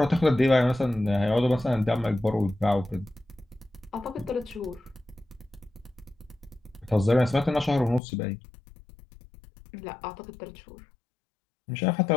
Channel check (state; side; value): drops out; right; at 8.0 s